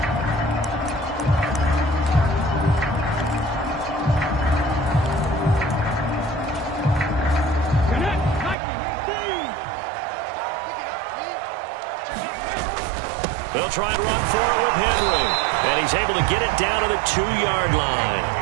They'll try and run for it with Henry. And he's able to get it down to the 2-yard line.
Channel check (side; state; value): left; drops out; at 8.6 s